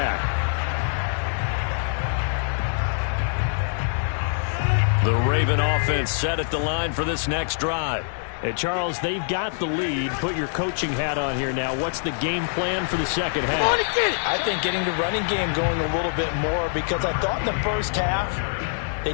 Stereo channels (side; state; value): right; silent; digital silence